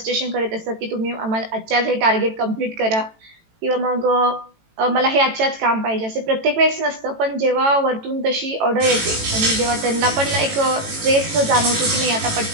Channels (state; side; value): late; left; 18 ms